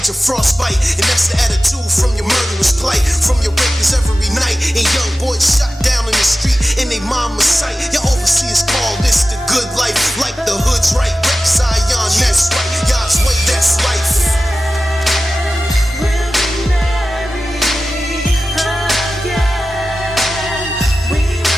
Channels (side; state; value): both; normal; correlation 0.94